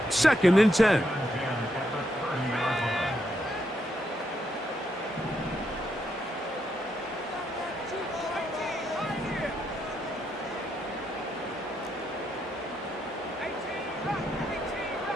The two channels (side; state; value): both; normal; correlation 0.79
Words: second and 10.